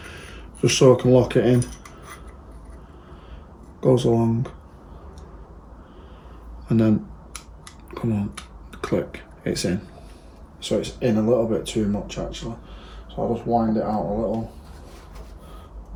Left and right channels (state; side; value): identical; both; correlation 1.00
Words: just so I can lock it in. Goes along, and then come on, click, it's in. So it's in a little bit too much actually, so I'll just wind it out a